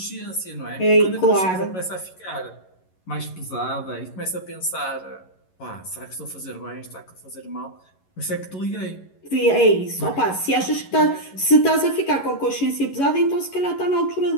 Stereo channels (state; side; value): late; right; 11 ms